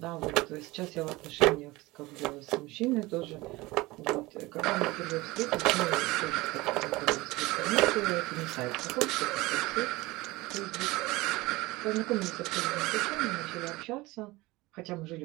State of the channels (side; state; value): left; quieter; 20.9 dB